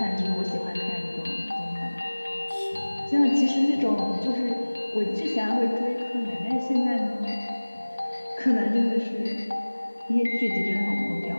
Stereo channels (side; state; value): both; inverted; correlation -1.00